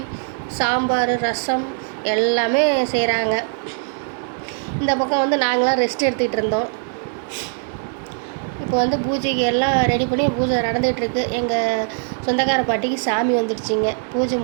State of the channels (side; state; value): left; silent; 61 dB below the other